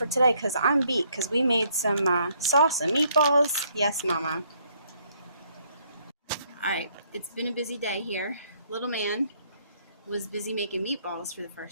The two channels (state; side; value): inverted; both; correlation -0.68